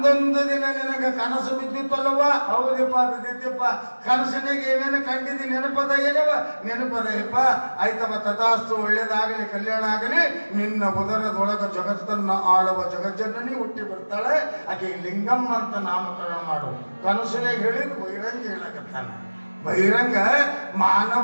ದಿನ ನಿನಗೆ ಕನಸು ಬಿದ್ದಿತ್ತಲ್ಲವ? ಹೌದಪ್ಪ ಬಿದ್ದಿತ್ತಪ್ಪ. ಕನಸಿನಾಗ ಏನೇನು ಕಂಡಿದ್ದಿ? ನೆನಪದ ಏನವ? ನೆನಪದಯಪ್ಪ. ಆಯ್ತವ, ತಥಾಸ್ತು, ಒಳ್ಳೇದಾಗಲಿ, ಕಲ್ಯಾಣ ಆಗಲಿ. ನಿನ್ನ ಉದರದೊಳಗ ಜಗತ್ತನ್ನು ಆಳುವ ಜಗಜ್ಜನನಿ ಹುಟ್ಟಿ ಬರ್ತಾಳೆ. ಆಕೆ ಲಿಂಗಮ್ಮ ಅಂತ ನಾಮಕರಣ ಮಾಡು. ಕನಸಿನಾಗ ಹೇಳಿದ್ ಬಹಿರಂಗ ಹೇಳಕತ್ತಾನ. ಬಹಿರಂಗ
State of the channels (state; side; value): inverted; both; correlation -1.00